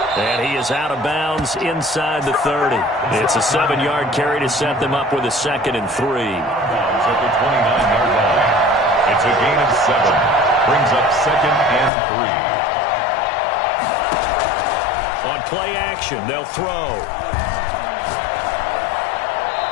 And he is out of bounds inside the 30. It's a 7-yard carry to set them up with a 2nd and 3. At the 29-yard line. It's a gain of 7. Brings up 2nd and 3. On play action, they'll throw.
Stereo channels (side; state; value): right; drops out; at 11.9 s